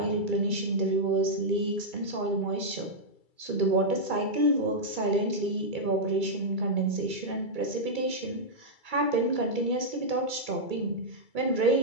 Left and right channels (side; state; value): left; late; 2.3 ms